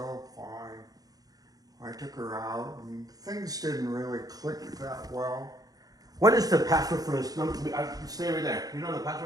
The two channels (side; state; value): left; late; 0.18 ms